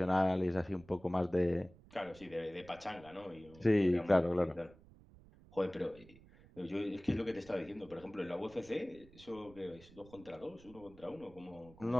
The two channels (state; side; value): noise; right; rumble, 23 dB below the sound